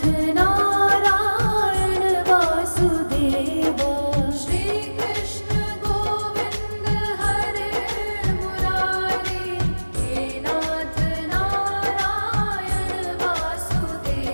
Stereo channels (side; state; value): both; inverted; correlation -1.00